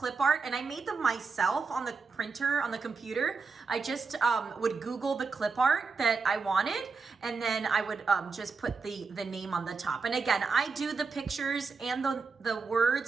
art, and I made them myself on the printer, on the computer. I just would Google the clip art that I wanted, and then I would just put the name on the top. And again, I do the pictures and the words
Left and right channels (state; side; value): quieter; left; 4.7 dB